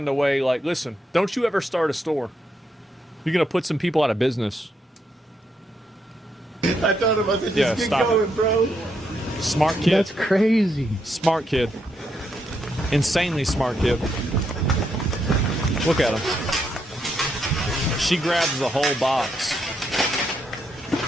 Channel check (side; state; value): both; normal; correlation 0.78